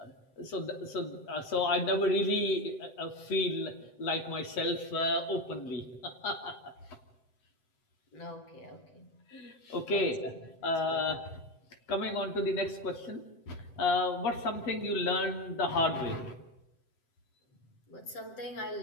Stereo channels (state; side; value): late; right; 7.8 ms